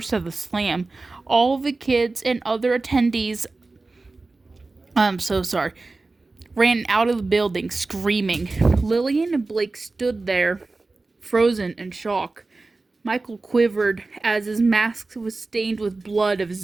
of the slam. All the kids and other attendees, ran out of the building screaming. Lillian and Blake stood there, frozen in shock. Michael quivered as his mask was stained with blood of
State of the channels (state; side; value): quieter; left; 3.5 dB